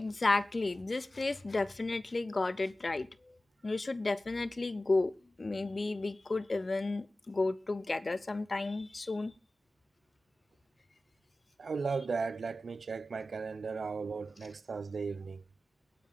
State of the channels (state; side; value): normal; both; correlation 0.95